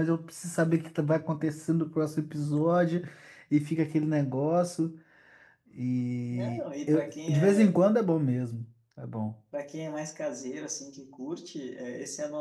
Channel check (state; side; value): identical; both; correlation 1.00